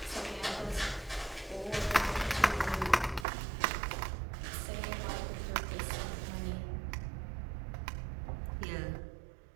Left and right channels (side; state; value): left; drops out; at 3.2 s